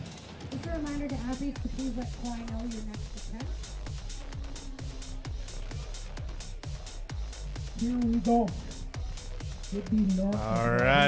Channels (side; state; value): both; identical; correlation 1.00